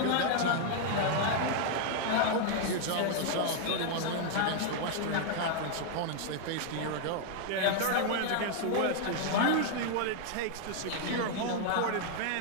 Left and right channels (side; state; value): both; different; correlation 0.00